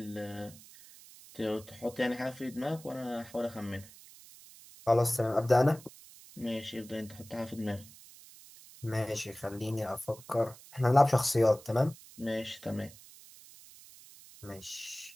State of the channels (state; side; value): noise; right; hiss, 20 dB below the sound